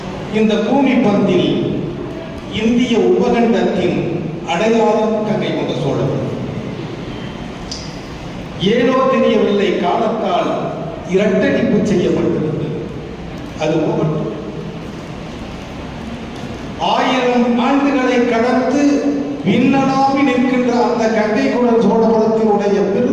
இந்த பூமி பந்தில் இந்திய உபகண்டத்தின் அடையாளம் கங்கை கொண்ட சோழபுரம். ஏனோ தெரியவில்லை, காலத்தால் இரட்டடிப்பு செய்யப்பட்டிருந்தது. அது போகட்டும். 1000 ஆண்டுகளை கடந்து விண்ணலாவி நிற்கின்ற அந்த கங்கை கொண்ட சோழபுரத்தினுடைய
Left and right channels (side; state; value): both; identical; correlation 1.00